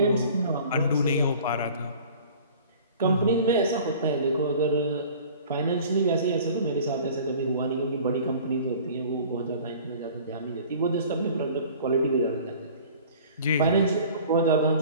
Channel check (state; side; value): inverted; both; correlation -0.46